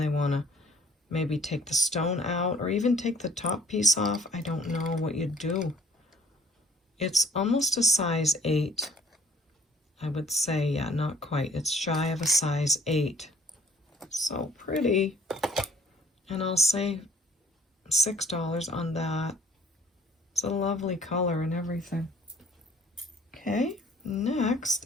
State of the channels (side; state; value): both; normal; correlation 0.57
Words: they want to maybe take the stone out or even take the top piece off. I don't know what you'd do. It's almost a size 8. I would say, yeah, not quite. It's shy of a size 8. So pretty. And I'll say $6 on that. It's a lovely color and everything. Okay, next